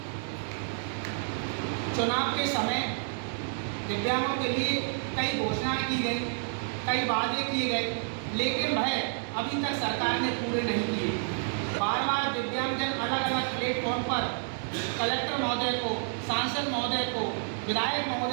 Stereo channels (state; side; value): silent; left; 58 dB below the other